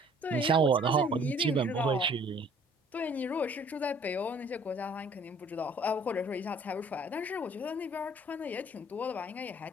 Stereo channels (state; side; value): normal; both; correlation 0.56